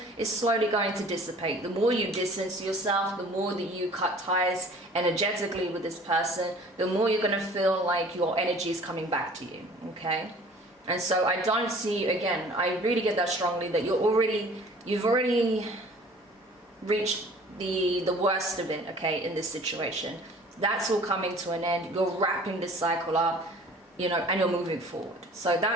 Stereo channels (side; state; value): both; normal; correlation 0.49